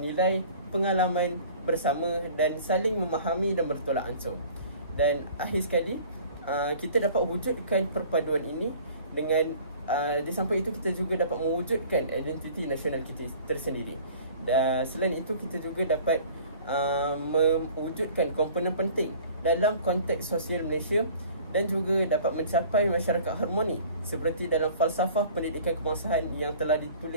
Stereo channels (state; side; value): inverted; both; correlation -0.48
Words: nilai, pengalaman bersama dan saling memahami dan bertolak ansur. Dan akhir sekali, kita dapat wujudkan perpaduan ini dengan di samping itu kita juga dapat mewujudkan identiti nasional kita tersendiri. Dan selain itu, kita juga dapat mewujudkan komponen penting dalam konteks sosial Malaysia dan juga dapat mencapai masyarakat harmoni seperti dalam falsafah pendidikan kebangsaan yang telah